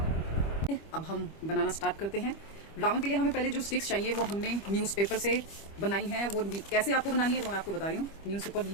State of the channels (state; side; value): late; right; 25 ms